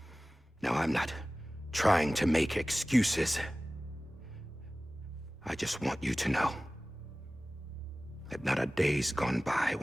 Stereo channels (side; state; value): both; normal; correlation 0.97